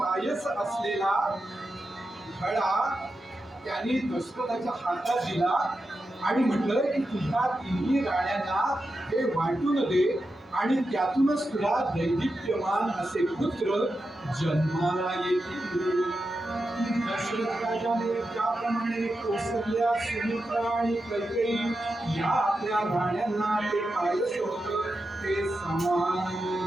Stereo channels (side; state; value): both; normal; correlation 0.89